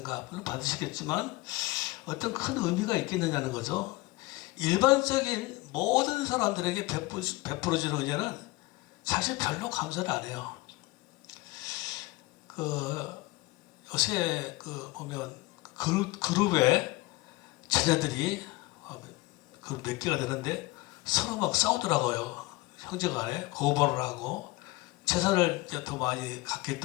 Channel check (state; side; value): quieter; right; 21.5 dB